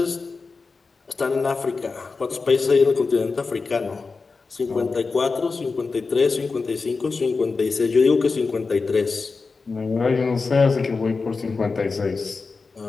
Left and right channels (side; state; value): right; quieter; 4.3 dB